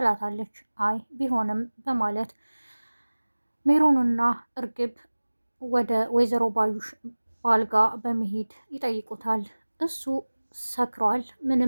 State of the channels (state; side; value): inverted; both; correlation -1.00